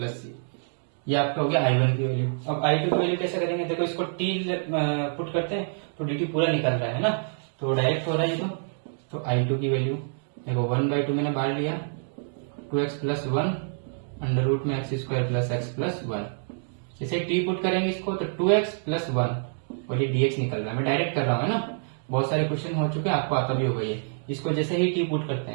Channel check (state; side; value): silent; left; digital silence